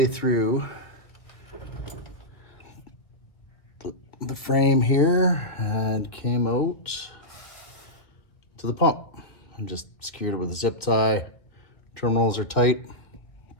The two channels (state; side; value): late; right; 1.6 ms